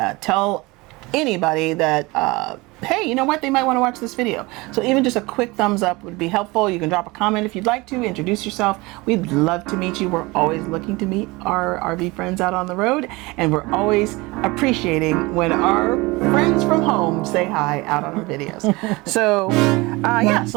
Tell anybody that, hey, you know what? They might want to watch this video. So even just a quick thumbs up would be helpful. You can drop a comment if you'd like to. Introduce yourself. We'd love to meet you. We're always looking to meet our RV friends out on the road. And we're always appreciating when our friends from home say hi out on our videos. So, yeah.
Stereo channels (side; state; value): left; quieter; 23.3 dB